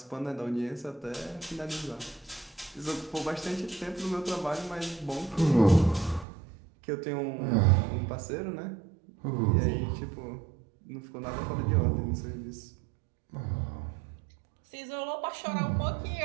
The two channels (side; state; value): left; drops out; at 6.2 s